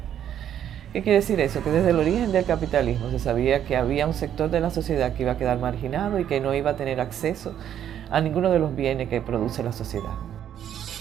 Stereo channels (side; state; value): left; quieter; 10.1 dB